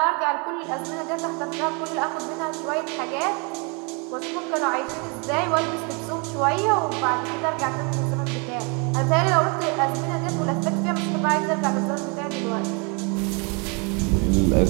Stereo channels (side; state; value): left; quieter; 33.1 dB